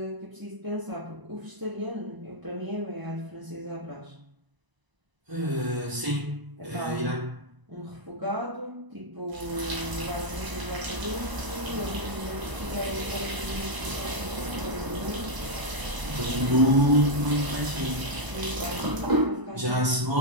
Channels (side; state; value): left; late; 1.0 ms